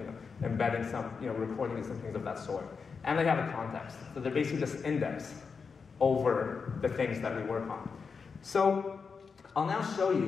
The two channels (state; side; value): quieter; right; 5.4 dB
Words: embedding some, recording and some things of that sort. And they have a context. So they're basically just index over the things that we work on. So I'll now show